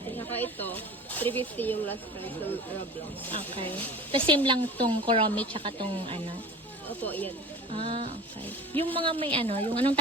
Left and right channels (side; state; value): both; normal; correlation 0.38